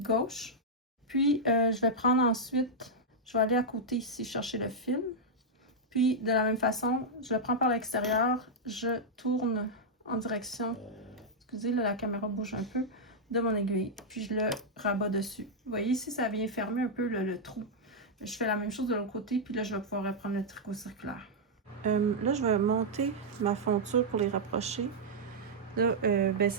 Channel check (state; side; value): normal; both; correlation -0.05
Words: Puis, je vais prendre ensuite, je vais aller à côté ici chercher le fil. Puis, de la même façon, je le prends par l'extérieur, je tourne en direction, excusez, là, la caméra bouge un peu, de mon aiguille. Puis, je le rabats dessus. Vous voyez ici, ça vient fermer un peu le trou. Je fais la même chose de l'autre côté, puis là, je vais pouvoir reprendre le tricot circulaire. Là, je vais monter ma fonture pour les rapprocher. Là, ben,